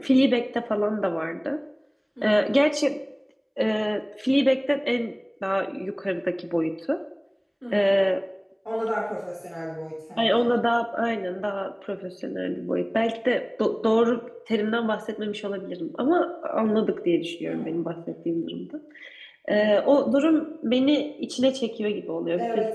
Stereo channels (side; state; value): both; identical; correlation 1.00